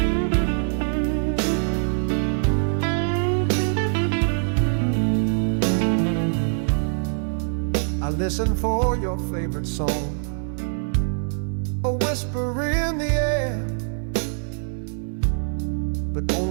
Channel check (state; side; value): silent; left; 63 dB below the other